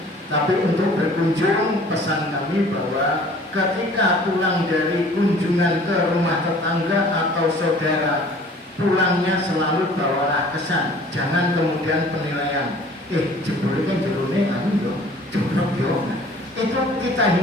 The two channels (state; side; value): normal; both; correlation 0.50